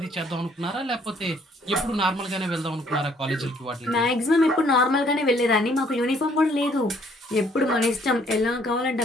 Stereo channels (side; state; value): both; normal; correlation 0.63